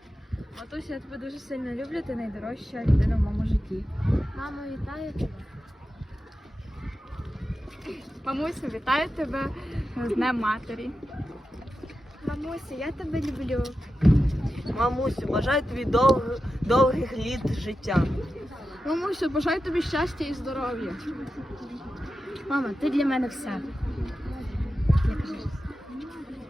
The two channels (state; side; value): normal; both; correlation 0.91